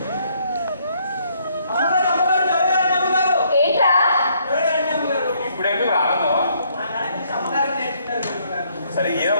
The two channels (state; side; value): inverted; both; correlation -0.68